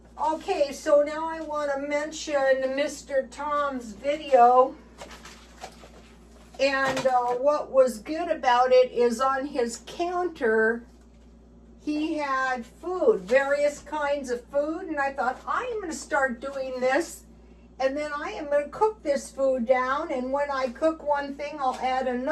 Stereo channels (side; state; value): both; identical; correlation 1.00